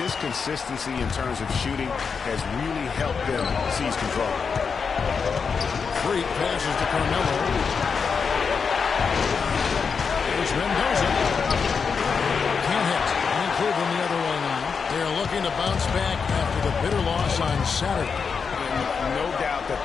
consistency in terms of shooting has really helped them seize control. Freak passes to Carmelo. Here's Mendoza. Can't hit. And Cleveland the other way now. They're looking to bounce back after the bitter loss on Saturday. And no doubt that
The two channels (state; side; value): quieter; right; 5.7 dB